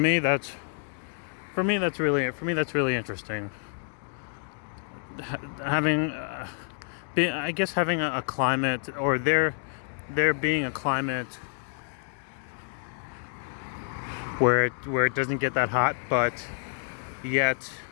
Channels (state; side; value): silent; right; 59 dB below the other